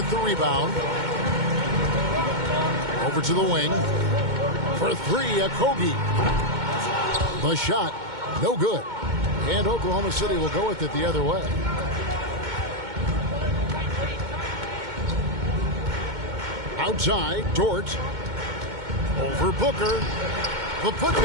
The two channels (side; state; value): left; late; 2.2 ms